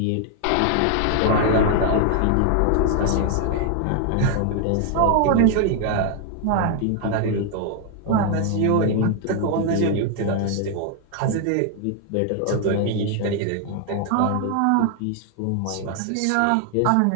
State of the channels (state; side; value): different; both; correlation 0.00